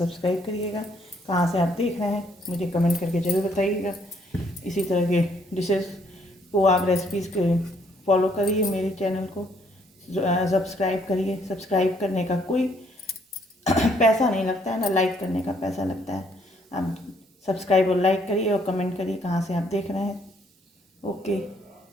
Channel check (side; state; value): both; normal; correlation 0.67